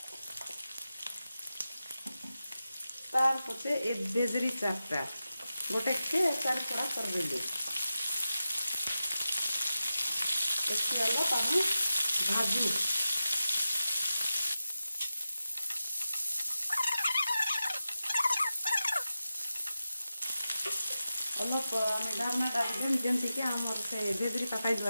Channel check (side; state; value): both; inverted; correlation -0.92